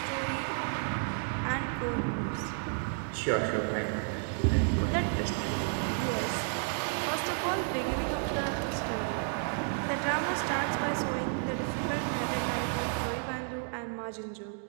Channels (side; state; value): left; silent; 57 dB below the other